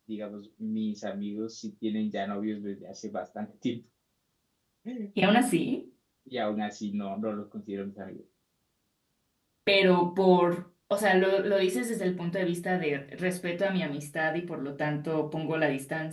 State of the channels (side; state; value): both; identical; correlation 1.00